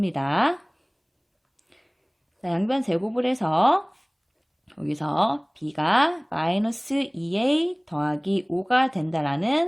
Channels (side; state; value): both; identical; correlation 1.00